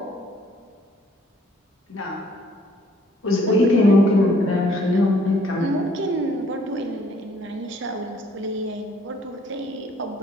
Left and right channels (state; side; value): normal; both; correlation 0.62